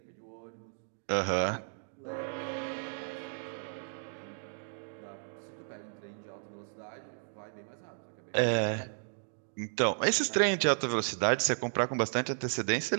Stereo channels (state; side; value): silent; left; 55 dB below the other